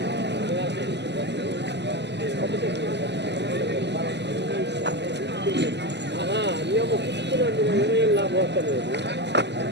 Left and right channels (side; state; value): left; late; 0.50 ms